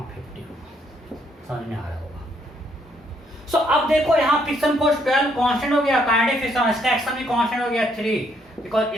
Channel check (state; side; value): normal; both; correlation 0.70